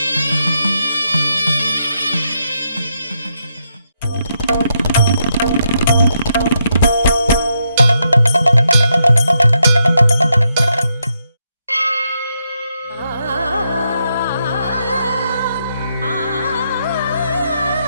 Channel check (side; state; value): both; inverted; correlation -0.80